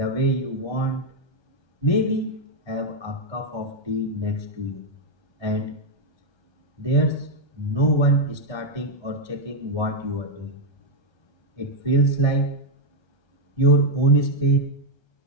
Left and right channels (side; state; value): right; late; 1.3 ms